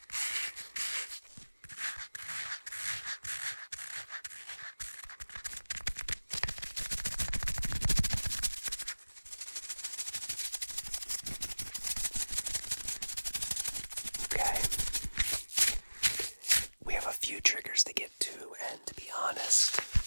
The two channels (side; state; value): both; inverted; correlation -1.00